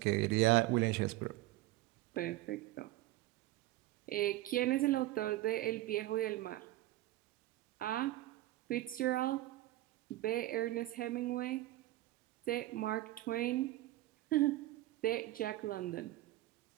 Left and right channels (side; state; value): left; quieter; 16.7 dB